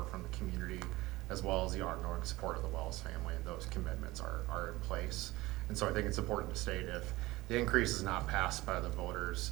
from the community as well as the ongoing support of the Wells family, and those commitments are in place. And so I think it's important to state if the increase is not passed by the voters,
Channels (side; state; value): left; quieter; 19.5 dB